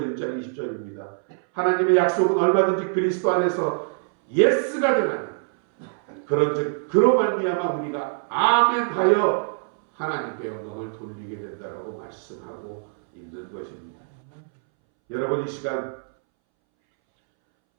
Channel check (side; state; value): left; silent; 62 dB below the other